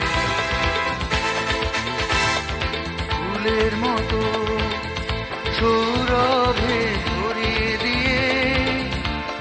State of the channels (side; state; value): both; identical; correlation 1.00